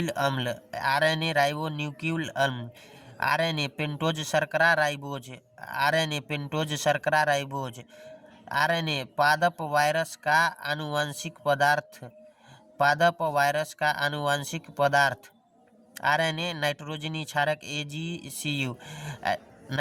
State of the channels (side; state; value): both; identical; correlation 1.00